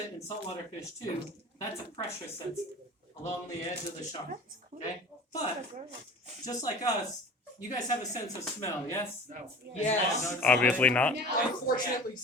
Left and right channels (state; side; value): normal; both; correlation 0.40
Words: in saltwater fish too, that's a pressure sensor along the edge of the shark. Okay? But, just like us, you guys have a sense of smell, yes? No. Yes. Obviously not. Unfortunately,